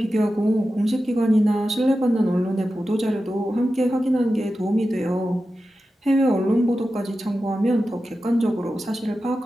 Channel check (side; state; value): both; normal; correlation 0.92